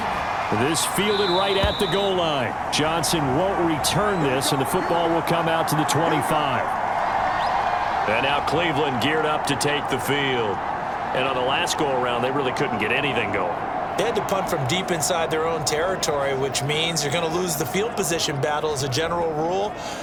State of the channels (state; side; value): identical; both; correlation 1.00